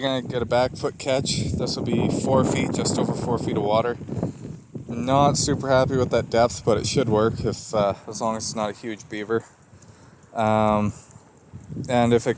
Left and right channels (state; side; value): identical; both; correlation 1.00